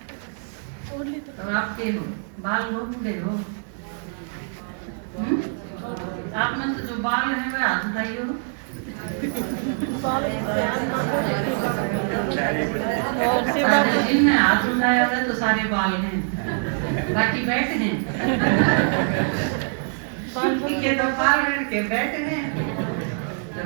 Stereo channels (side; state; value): left; silent; 57 dB below the other